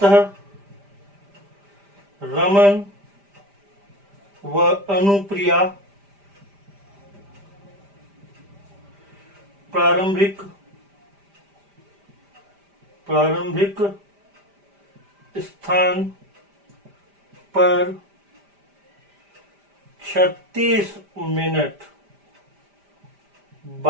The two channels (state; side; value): late; left; 5.0 ms